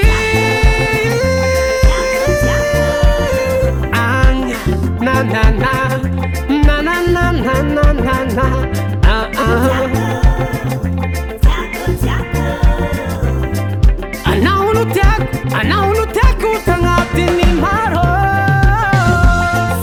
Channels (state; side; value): identical; both; correlation 1.00